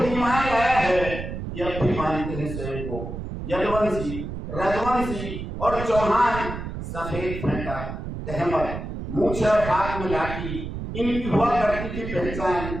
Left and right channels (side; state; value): right; noise; rumble, 7 dB below the sound